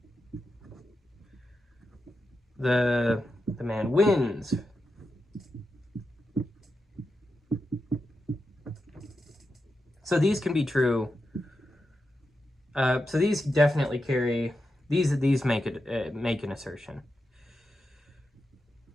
The man wins. So these can be true. So these definitely carry, these make an assertion.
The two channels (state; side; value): normal; both; correlation 0.88